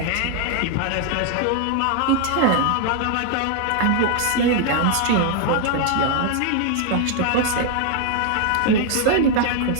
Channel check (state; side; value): different; both; correlation 0.00